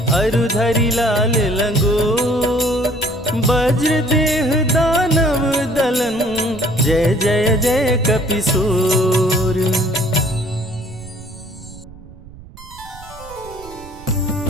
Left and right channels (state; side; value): noise; right; rumble, 19 dB below the sound